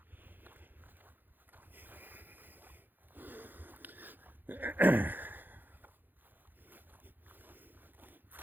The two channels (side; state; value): left; late; 0.090 ms